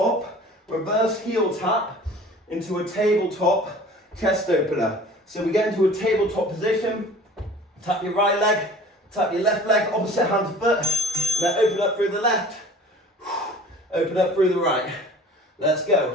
reverse heel tap into a tabletop chest opener. So we get into a tabletop position, tap your right leg, tap your left leg, opposite hand to foot, and then open up through the left, open up through the right. Let's go.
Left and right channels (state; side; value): normal; both; correlation 0.45